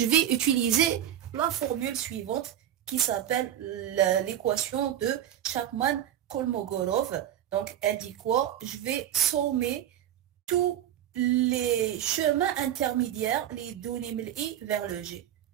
vais utiliser la formule suivante qui s'appelle l'équation de Chapman-Kolmogorov. Donc, elle dit quoi? Je vais sommer tous les chemins intermédiaires, les données من I vers le G.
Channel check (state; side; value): quieter; left; 11.2 dB